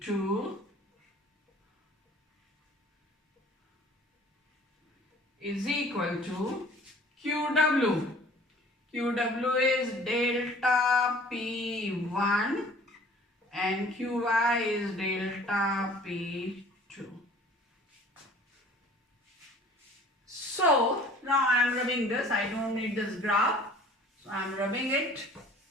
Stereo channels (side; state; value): both; normal; correlation 0.51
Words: is equal to QW. QW is delta P1 and QY is delta P2. So now I am rubbing this. I don't need this graph. So I am rubbing it.